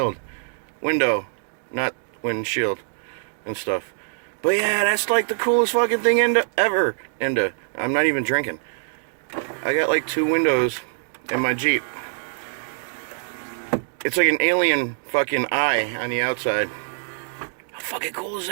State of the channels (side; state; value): left; silent; digital silence